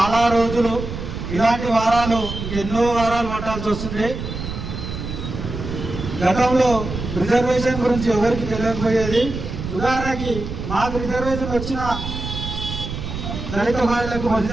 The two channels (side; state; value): right; noise; rumble, 7 dB below the sound